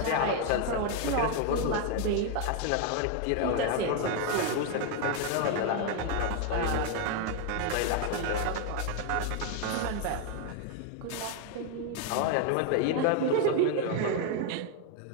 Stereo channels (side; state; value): both; different; correlation 0.01